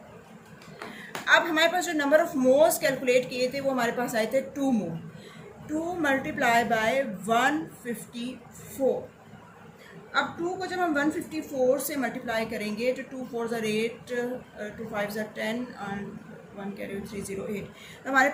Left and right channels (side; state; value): both; identical; correlation 1.00